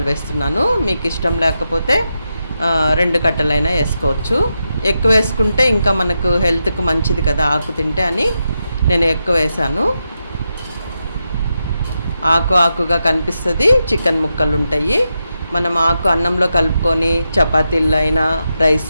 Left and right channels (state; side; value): inverted; both; correlation -0.87